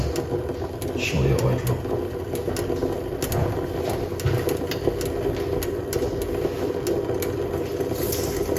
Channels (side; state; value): both; identical; correlation 1.00